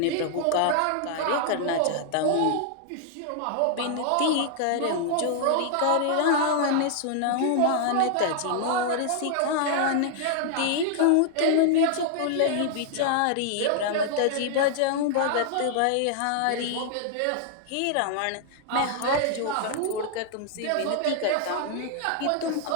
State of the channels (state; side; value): different; both; correlation 0.00